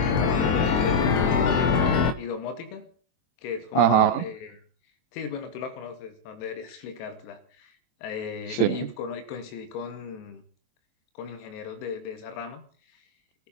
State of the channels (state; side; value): late; right; 23 ms